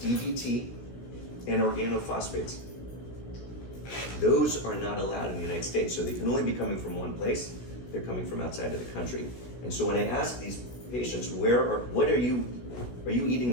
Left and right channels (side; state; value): right; late; 16 ms